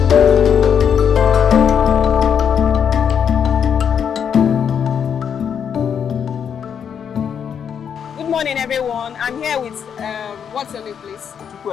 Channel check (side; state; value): right; quieter; 7.8 dB